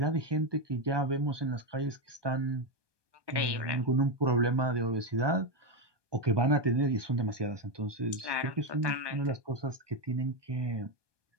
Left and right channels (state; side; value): late; left; 1.1 ms